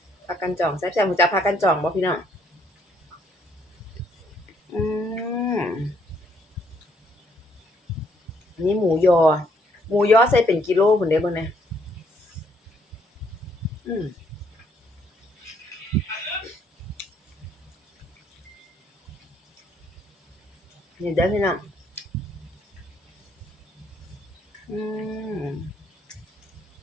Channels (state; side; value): normal; both; correlation 0.69